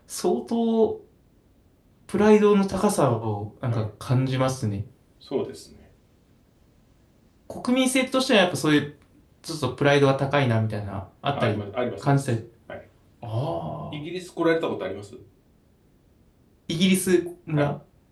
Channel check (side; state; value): both; identical; correlation 1.00